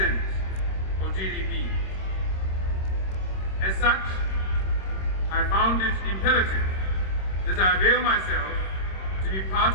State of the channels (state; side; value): late; right; 26 ms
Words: of GDP. As such, I found it imperative that I avail myself to be